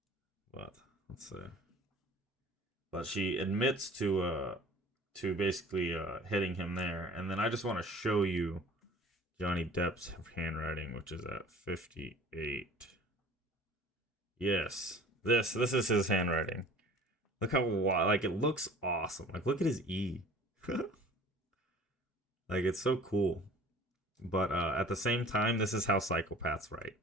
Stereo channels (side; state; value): both; normal; correlation 0.46